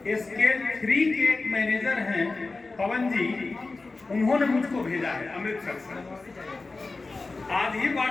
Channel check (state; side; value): quieter; right; 3.6 dB